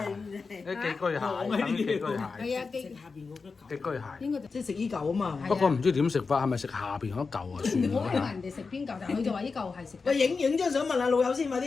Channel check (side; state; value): right; quieter; 4.6 dB